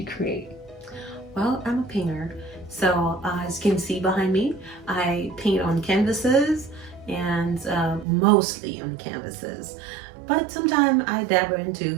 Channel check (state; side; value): drops out; left; at 8.1 s